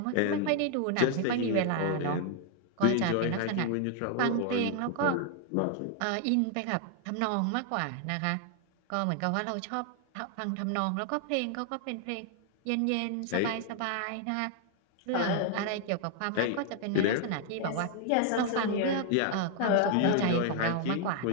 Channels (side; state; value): both; different; correlation 0.00